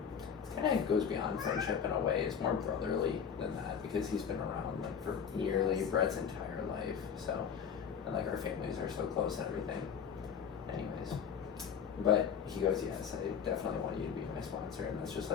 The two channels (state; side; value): quieter; right; 7.3 dB